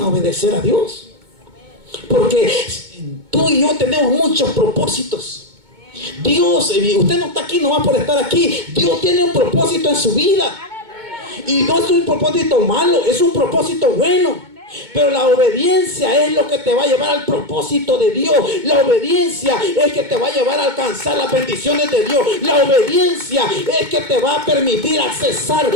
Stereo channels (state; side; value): late; left; 2.2 ms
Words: obedecer a Dios. Porque tú y yo tenemos muchos propósitos. Dios, usted no está aquí nomás por estar aquí. Dios tiene un propósito en su vida. Y no es un propósito malo, es un propósito bueno. Pero la obediencia es lo que te va a llevar al propósito de Dios. La obediencia es que te va a llevar a alcanzar las bendiciones de Dios. La obediencia es que te va a permitir accesar